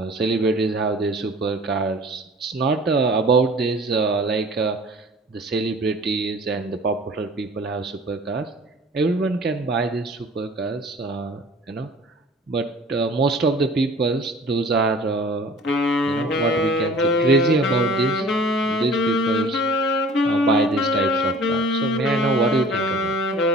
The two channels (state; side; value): normal; both; correlation 0.46